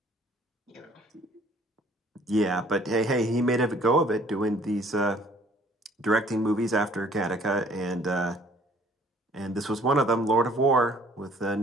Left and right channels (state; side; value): normal; both; correlation 0.56